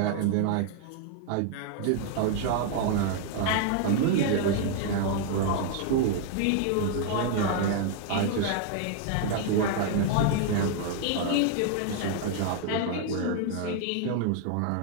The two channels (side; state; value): both; different; correlation 0.00